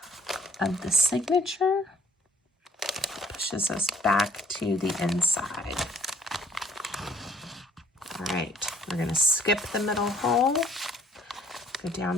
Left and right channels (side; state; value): both; normal; correlation 0.60